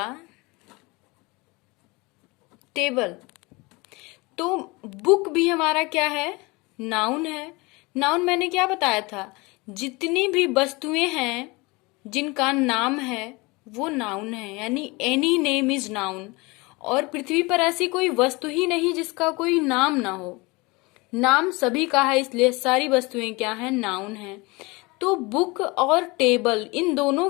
table. तो बुक भी हमारा क्या है? नाउन है। नाउन मैंने क्या बताया था? जितनी भी वस्तुएं हैं जिनका नाम है वो नाउन है, यानी एनी नेम इज नाउन। और पृथ्वी पर ऐसी कोई वस्तु ही नहीं जिसका कोई नाम ना हो। नाम सभी का है, इसलिए सारी वस्तुएं क्या है? नाउन है। तो बुक और टेबल इन दोनों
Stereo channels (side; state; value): right; quieter; 25.1 dB